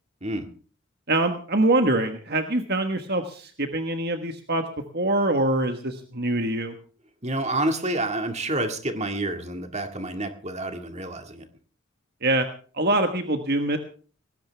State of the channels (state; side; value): normal; both; correlation 0.15